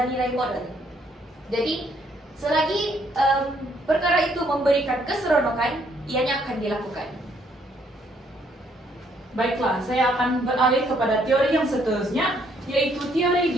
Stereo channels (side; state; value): both; normal; correlation 0.68